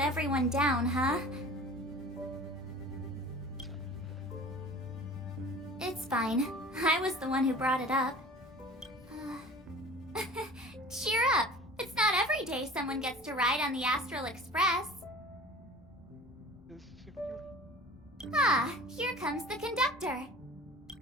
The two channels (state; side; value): normal; both; correlation 0.42